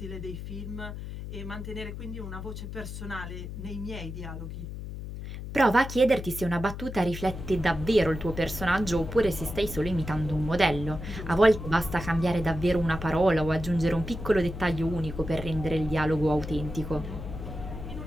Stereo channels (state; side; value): noise; left; hum, 8 dB below the sound